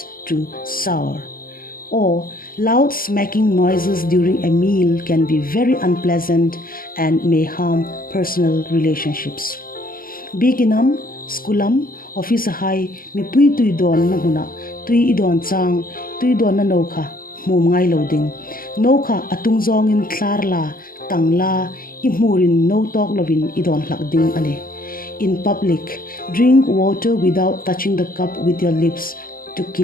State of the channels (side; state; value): right; late; 0.42 ms